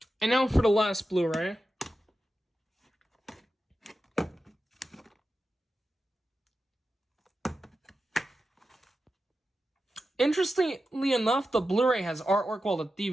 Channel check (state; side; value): normal; both; correlation 0.91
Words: And now for the last Blu-ray. Interestingly enough, the Blu-ray has artwork while the